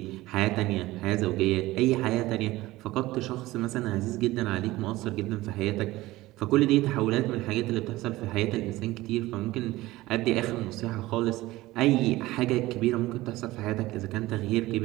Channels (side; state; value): left; quieter; 18.1 dB